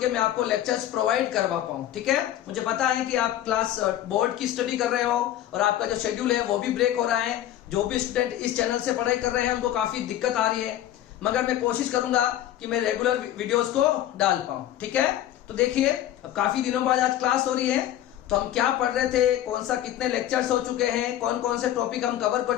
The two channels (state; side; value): quieter; right; 12.5 dB